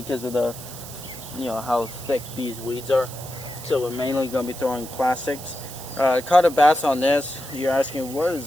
of the, how thick these weeds are. So we're mainly going to be throwing plastics. Caught a bass on this. You're asking, what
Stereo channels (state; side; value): noise; right; hiss, 13 dB below the sound